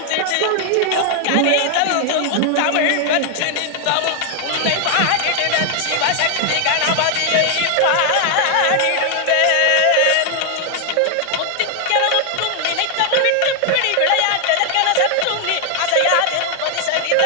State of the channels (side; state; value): both; different; correlation 0.00